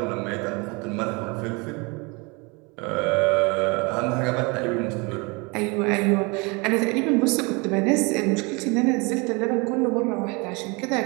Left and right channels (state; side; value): quieter; left; 28.5 dB